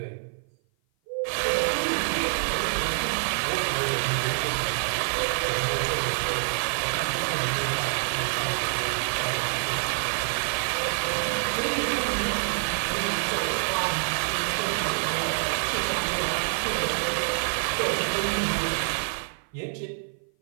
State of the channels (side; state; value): left; silent; 55 dB below the other